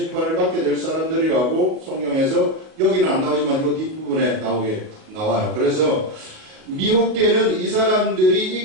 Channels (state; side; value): late; left; 37 ms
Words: 받게 될 사람들이라고 성경에서, 여기는 안 나오지만 이 뒷부분에 나와요. 그래서 미혹되는 이 사람들이